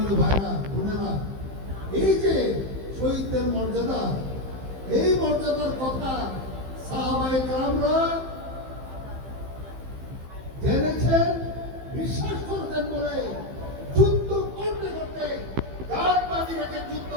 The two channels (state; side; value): late; left; 15 ms